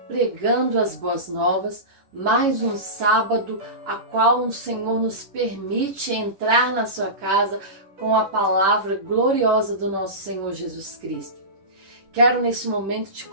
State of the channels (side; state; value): left; late; 10 ms